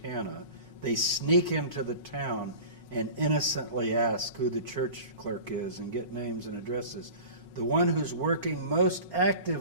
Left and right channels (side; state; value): both; inverted; correlation -0.38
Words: They sneak into the town and innocently ask who the church clerk is and get names and addresses. The one who's working most